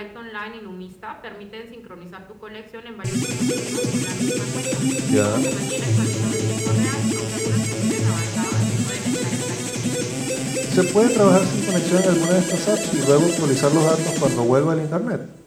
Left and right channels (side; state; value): both; identical; correlation 1.00